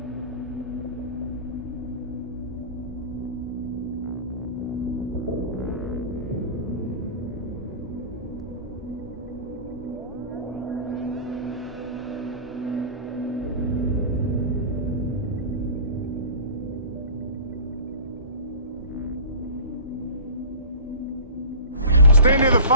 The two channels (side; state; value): both; inverted; correlation -0.37